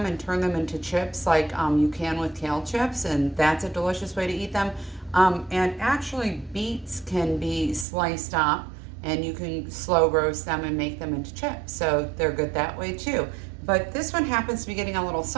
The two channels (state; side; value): drops out; left; at 7.9 s